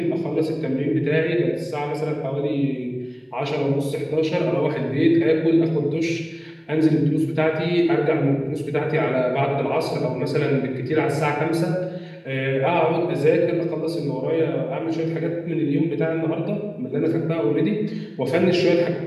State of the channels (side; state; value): both; identical; correlation 1.00